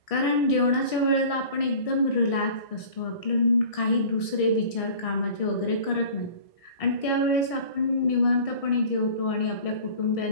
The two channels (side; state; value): right; late; 1.6 ms